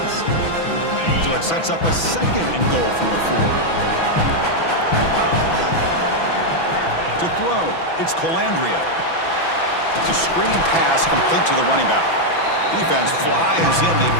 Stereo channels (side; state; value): right; late; 6.0 ms